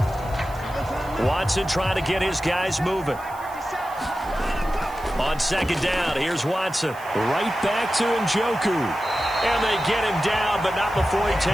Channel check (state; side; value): noise; right; hiss, 22 dB below the sound